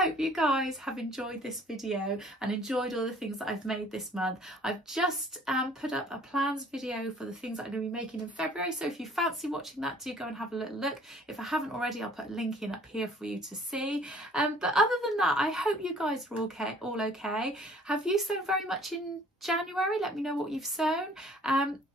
you guys have enjoyed this video and enjoyed all the things that I've made this month. I've just put up a plans video for the things that I'm going to be making in February, so if you fancy watching that, do go and have a little look. If I haven't already, I'll put a link in up here for you to see. But other than that, I hope you guys are all okay. Have you sewn very much in January? Let me know what you've sewn.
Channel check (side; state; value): both; normal; correlation 0.55